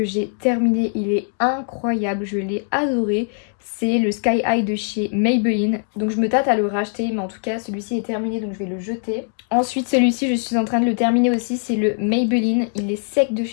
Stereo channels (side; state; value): right; silent; 56 dB below the other